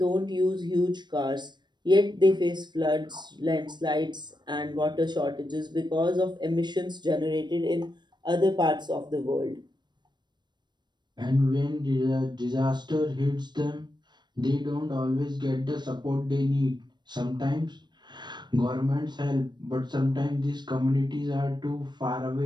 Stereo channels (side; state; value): left; late; 0.21 ms